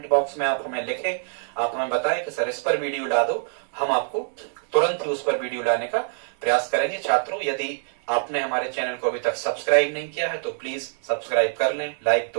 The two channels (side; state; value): left; silent; 62 dB below the other